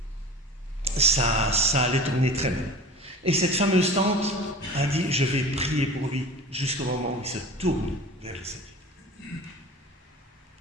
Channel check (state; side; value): normal; both; correlation 0.38